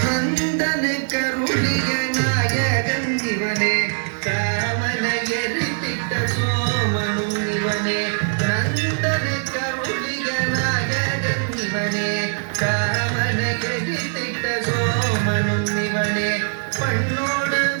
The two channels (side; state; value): left; silent; digital silence